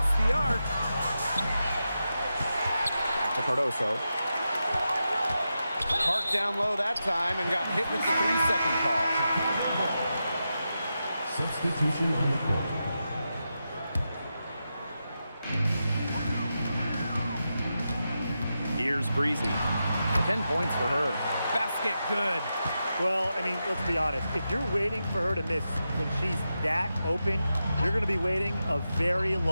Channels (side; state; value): both; inverted; correlation -0.89